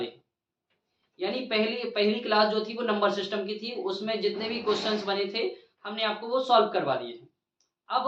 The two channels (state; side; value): identical; both; correlation 1.00